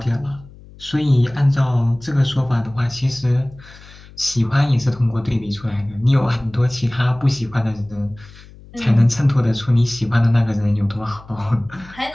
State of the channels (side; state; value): left; noise; hum, 21 dB below the sound